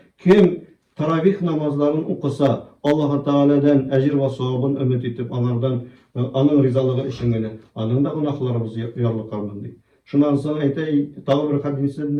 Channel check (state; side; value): identical; both; correlation 1.00